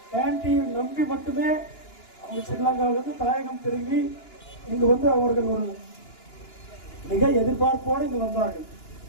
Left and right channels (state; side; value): late; right; 2.9 ms